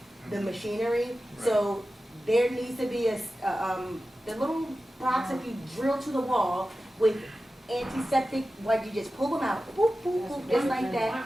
the machinery. So there needs to be the little box that you drill to the wall with antiseptic, like you just pull them out, whoop, whoop, whoop, just like Why that,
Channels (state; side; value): normal; both; correlation 0.94